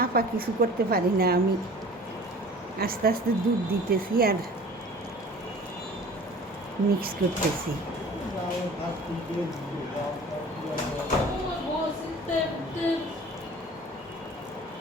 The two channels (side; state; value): both; normal; correlation 0.44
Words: কিছু করতে পারি না। আমি আস্তে আস্তে দুধ দিতেছি আর মিক্স করতেছি।